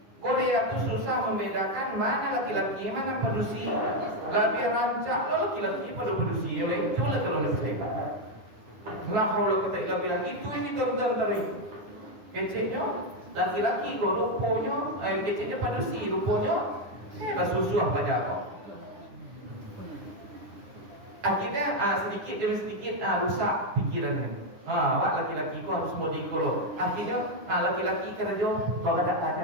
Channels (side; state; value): left; late; 9.9 ms